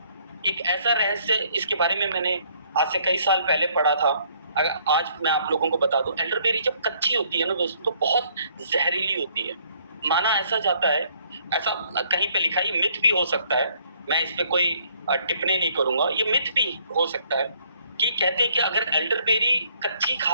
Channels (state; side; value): inverted; both; correlation -0.65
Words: एक ऐसा रहस्य, इसके बारे में मैंने आज से कई साल पहले पढ़ा था। अगर आज मैं आप लोगों को बता दूं, एल्डरबेरी जब कच्ची होती है ना दोस्तों, तो बहुत जहरीली होती है। माना ऐसा जाता है, ऐसा कहीं पे लिखा है, मिथ भी हो सकता है, मैं इस पे कोई टिप्पणी नहीं करूंगा, ये मिथ भी हो सकता है कि कहते हैं कि अगर एल्डरबेरी कच्ची